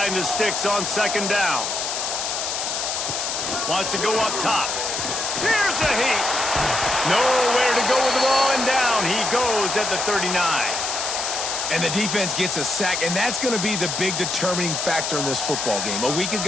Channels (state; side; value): noise; left; hiss, 2 dB below the sound